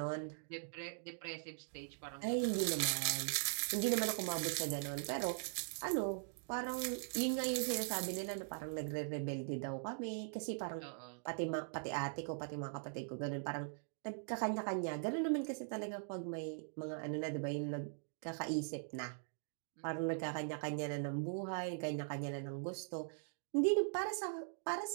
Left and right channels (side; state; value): left; silent; digital silence